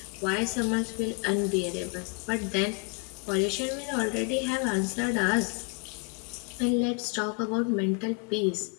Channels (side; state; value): right; quieter; 36.4 dB